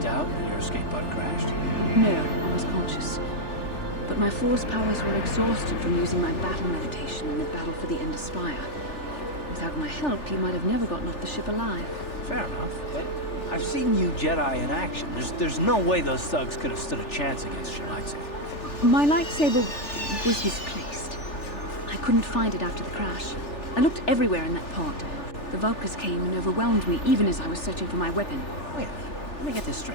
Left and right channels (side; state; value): right; late; 3.4 ms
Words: out when your escape pod crashed? No, I was conscious. But my force powers were exhausted from using my battle meditation in the battle for the Ender Spire. Without my help, you might have never gotten off the ship alive. Fair enough, but I've seen you Jedi in action. There's no way those thugs could have stood a chance against your lightsaber. My lightsaber was misplaced. I couldn't find it after the crash. I looked everywhere in that pod. The Vulkars came and overwhelmed me even as I was searching for my weapon. Wait a minute, let me get this